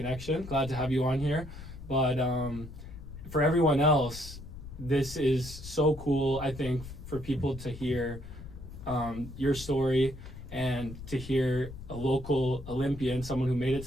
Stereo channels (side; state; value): left; noise; rumble, 12 dB below the sound